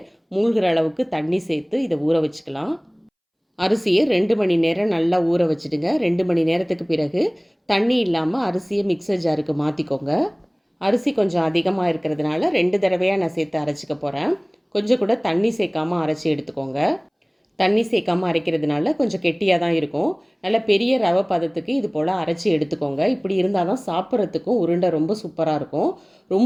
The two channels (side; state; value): both; identical; correlation 1.00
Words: மூழ்கிற அளவுக்கு தண்ணி சேர்த்து இதை ஊற வச்சுக்கலாம். அரிசியை 2 மணி நேரம் நல்லா ஊற வச்சுடுங்க. 2 மணி நேரத்துக்கு பிறகு தண்ணி இல்லாமல் அரிசியை மிக்சர் ஜாருக்கு மாற்றிக்கோங்க. அரிசி கொஞ்சம் அதிகமாக இருக்கிறதுனால 2 தடவையாக நான் சேர்த்து அரைச்சிக்க போகிறேன். கொஞ்சம் கூட தண்ணி சேர்க்காமல் அரைச்சி எடுத்துக்கோங்க. தண்ணி சேர்க்காமல் அரைக்கிறதுனால கொஞ்சம் கெட்டியாக தான் இருக்கும். நல்ல பெரிய ரவை பதத்துக்கு இது போல் அரைச்சி எடுத்துக்கோங்க. இப்படி இருந்தால் தான் சாப்பிட்றதுக்கும் உருண்டை ரொம்ப சூப்பராக இருக்கும்.